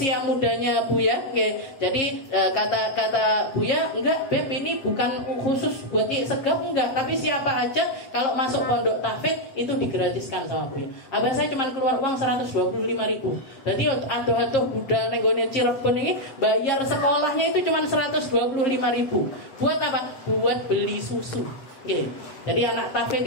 mudanya Buya. Jadi kata Buya, enggak Beb, ini bukan khusus buat segap, enggak, tapi siapa aja kalau masuk pondok tahfidz itu digratiskan sama Buya. Abah saya cuma keluar uang 125.000. Jadi aduh budal nenggone Cirebon ini bayar sekolahnya itu cuma 125.000. Buat apa? Buat beli susu. Jadi anak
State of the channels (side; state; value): right; late; 7.5 ms